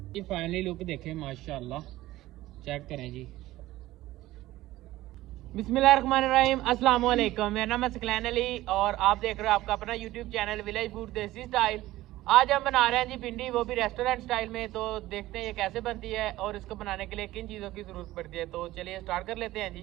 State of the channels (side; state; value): left; quieter; 16.5 dB